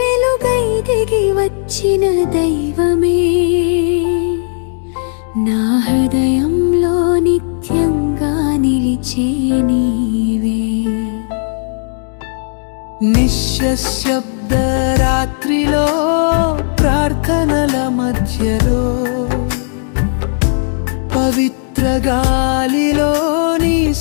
దిగి వచ్చిన దైవమే నా హృదయంలో నిత్యంగా నిలిచే నీవే నిశ్శబ్ద రాత్రిలో ప్రార్థనల మధ్యలో పవిత్ర గాలిలో నీ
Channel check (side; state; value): right; silent; digital silence